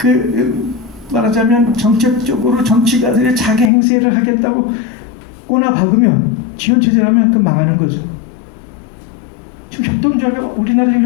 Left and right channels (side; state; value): right; drops out; at 3.7 s